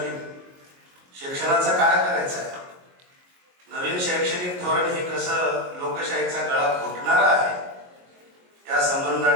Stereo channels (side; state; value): left; late; 22 ms